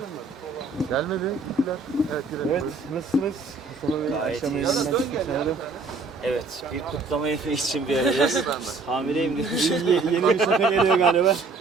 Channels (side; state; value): left; quieter; 3.9 dB